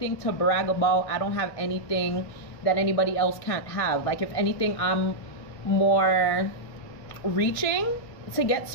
to brag about. I don't have anything that anybody else can't have. Like, if anything, I'm more reaching to get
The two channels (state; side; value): late; right; 1.7 ms